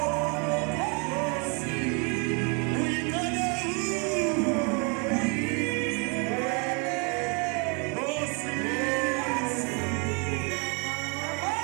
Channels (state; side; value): quieter; left; 34.6 dB